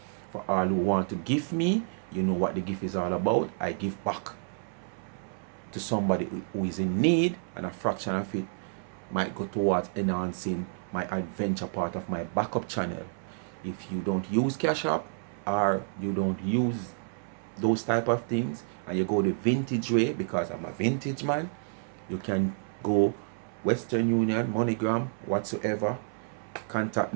For all who want to give me, you know what the gift is all about. I give back to somebody who is in need, and a fraction of it might go towards enhancing my adventure part of my backup channel. If you don't use cash app or you don't use those type of things and you go the vintage way, because I'm a vintage man, you can go Western Union, MoneyGram, whatsoever. Contact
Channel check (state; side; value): silent; left; 58 dB below the other